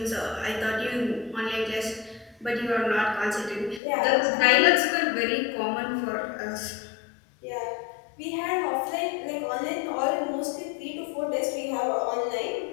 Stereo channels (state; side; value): drops out; right; at 3.8 s